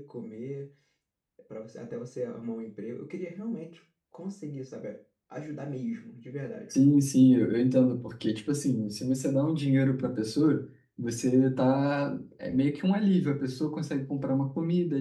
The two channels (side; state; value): both; identical; correlation 1.00